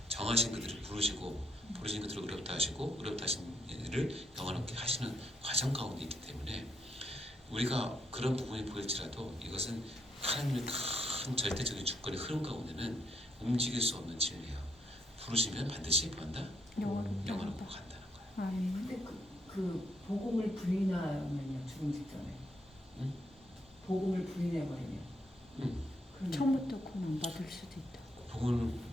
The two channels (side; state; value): both; normal; correlation 0.76